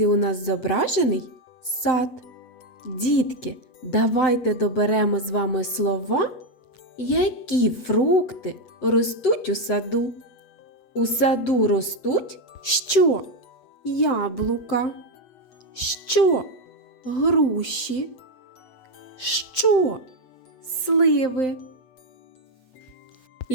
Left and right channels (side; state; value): right; late; 7.7 ms